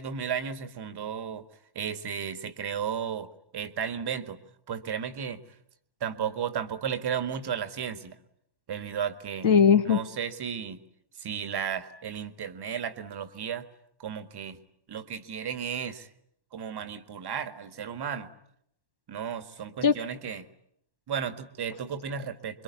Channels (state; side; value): late; left; 1.1 ms